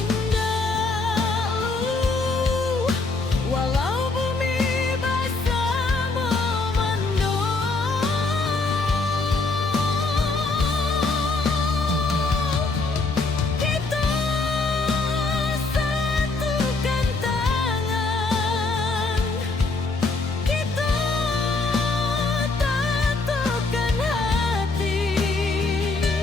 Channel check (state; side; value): quieter; right; 3.6 dB